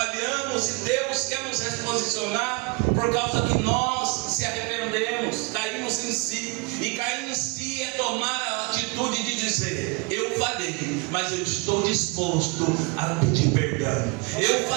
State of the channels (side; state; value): left; quieter; 27.9 dB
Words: e Deus quer nos reposicionar por causa que nós se arrependemos, caímos em si. E cair em si é tomar a atitude de dizer: eu falhei, mas eu estou disposto a pedir perdão. Eu